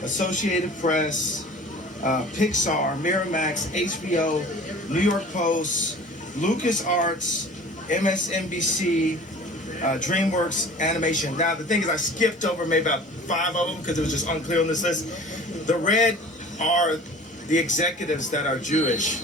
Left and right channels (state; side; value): normal; both; correlation 0.44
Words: Associated Press, Pixar, Miramax, HBO, New York Post, LucasArts, MSNBC, DreamWorks Animation. Now, the thing is, I skipped over maybe about 5 of them because it was just unclear on this list. The red are the executives that are Jewish